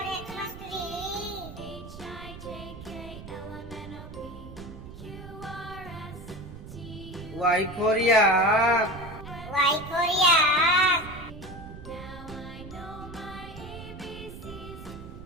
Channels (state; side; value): noise; right; rumble, 14 dB below the sound